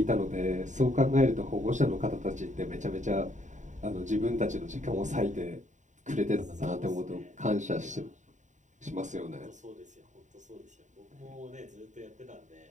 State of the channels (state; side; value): late; left; 0.36 ms